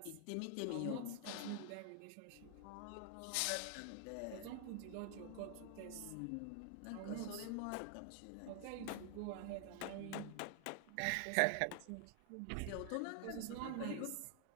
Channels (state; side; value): different; both; correlation 0.00